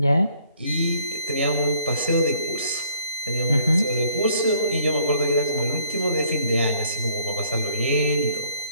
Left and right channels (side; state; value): both; inverted; correlation -0.61